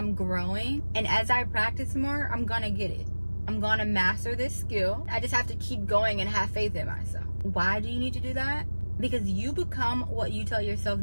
growing, and as I practice more, I'm gonna get it. I'm gonna master this skill. I just have to keep going and have faith in myself. Why do you need to do that? Because you become what you tell yourself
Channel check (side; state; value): both; inverted; correlation -1.00